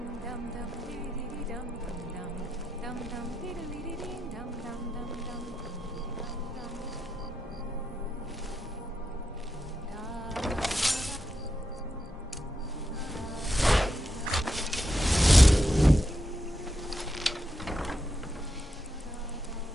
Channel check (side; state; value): both; normal; correlation 0.85